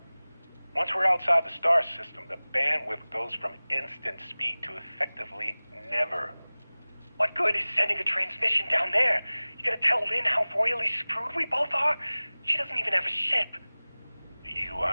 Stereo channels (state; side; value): inverted; both; correlation -0.99